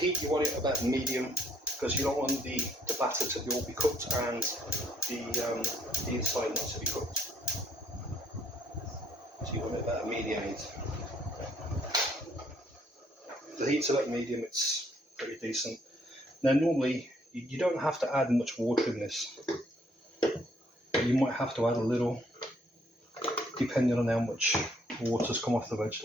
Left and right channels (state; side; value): normal; both; correlation 0.67